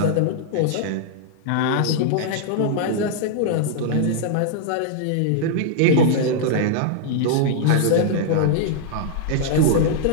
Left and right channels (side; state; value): both; different; correlation -0.01